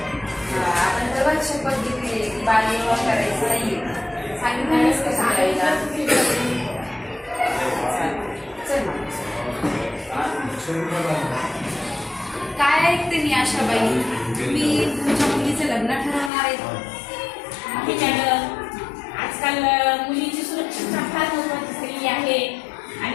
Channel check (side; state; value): right; drops out; at 16.3 s